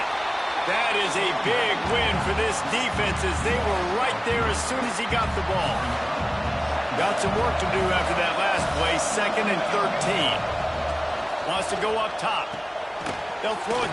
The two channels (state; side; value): identical; both; correlation 1.00